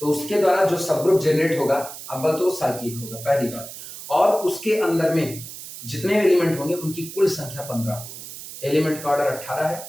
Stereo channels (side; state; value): right; noise; hiss, 12 dB below the sound